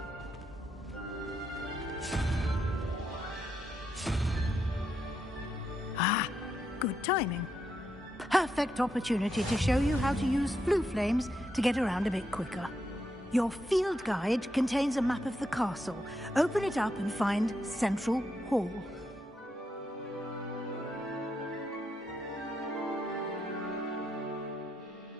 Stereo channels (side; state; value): both; normal; correlation 0.81